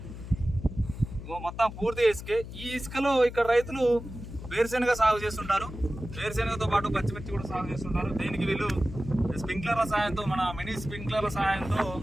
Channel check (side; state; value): left; noise; hum, 11 dB below the sound